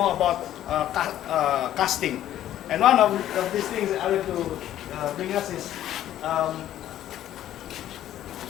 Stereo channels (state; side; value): quieter; right; 12.2 dB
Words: about casting. And one of these things I want to bring us is